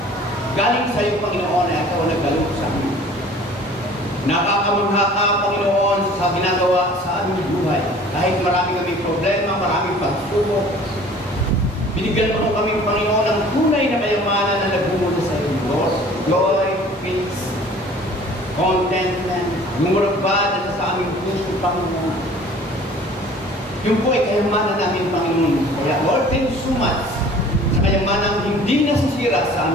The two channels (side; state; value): both; normal; correlation 0.48